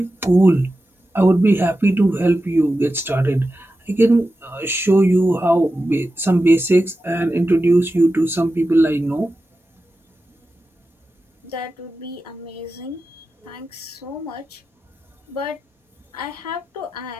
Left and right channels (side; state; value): both; normal; correlation 0.92